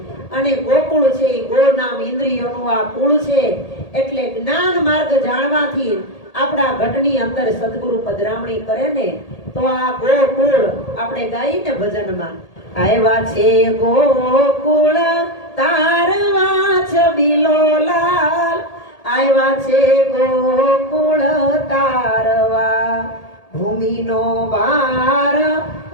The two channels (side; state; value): right; late; 1.8 ms